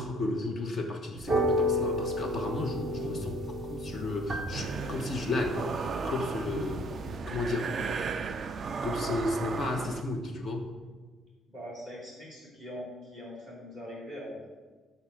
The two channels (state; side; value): normal; both; correlation 0.60